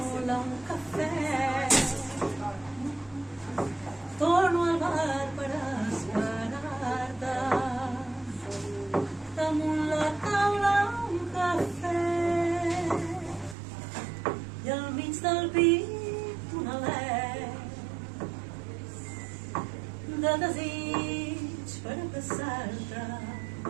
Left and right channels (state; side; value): drops out; left; at 13.6 s